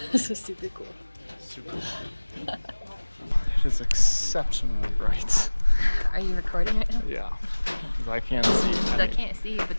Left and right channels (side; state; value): both; inverted; correlation -1.00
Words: This is super cool. Super fun. It is exceptionally bright. Are you recording right now? Yeah, because I can't see. I can't see, but